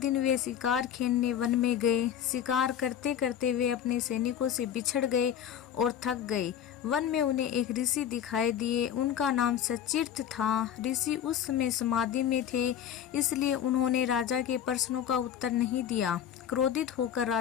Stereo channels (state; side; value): quieter; right; 9.5 dB